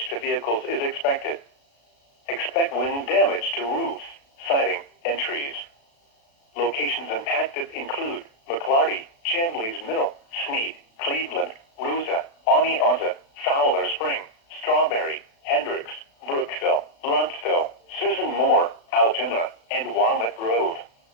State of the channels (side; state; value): right; late; 36 ms